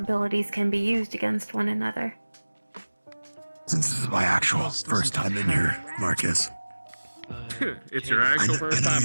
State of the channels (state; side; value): inverted; both; correlation -1.00